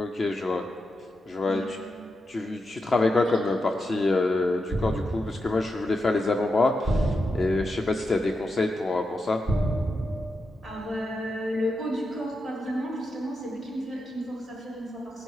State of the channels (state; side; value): normal; both; correlation 0.87